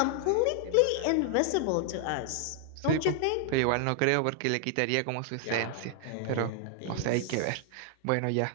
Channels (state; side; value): different; both; correlation 0.00